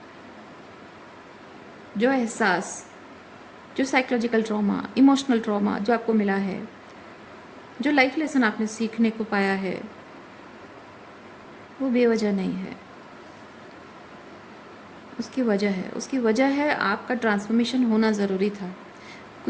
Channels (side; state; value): both; identical; correlation 1.00